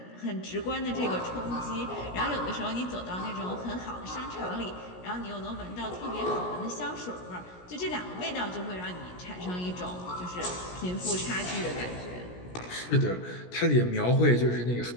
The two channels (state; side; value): late; right; 17 ms